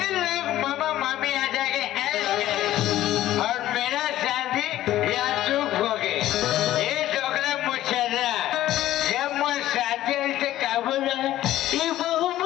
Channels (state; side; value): quieter; right; 14.0 dB